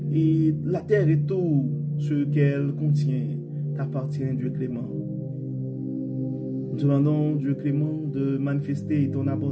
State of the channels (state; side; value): identical; both; correlation 1.00